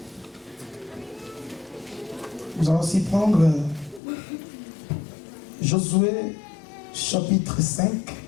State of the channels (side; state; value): right; drops out; at 4.0 s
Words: nous allons aussi prendre Josué chapitre 5.